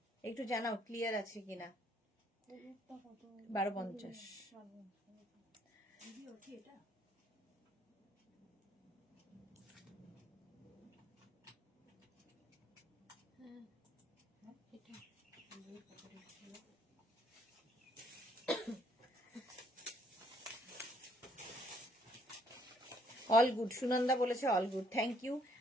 একটু জানাও ক্লিয়ার আছে কিনা। 1250। অল গুড, সুনন্দা বলেছে অল গুড, থ্যাংক ইউ।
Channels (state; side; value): normal; both; correlation 0.66